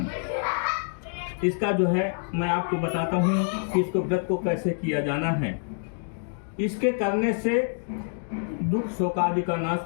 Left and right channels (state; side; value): silent; right; digital silence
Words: इसका जो है मैं आपको बताता हूँ कि इसको व्रत को कैसे किया जाना है। इसके करने से दुख शोक आदि का